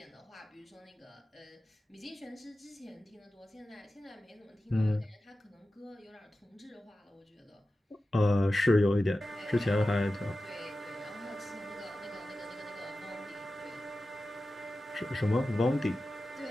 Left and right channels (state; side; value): normal; both; correlation 0.94